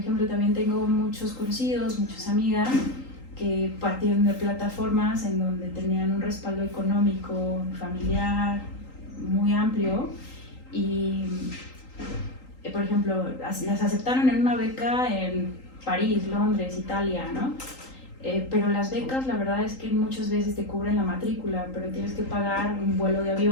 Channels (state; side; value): late; right; 3.8 ms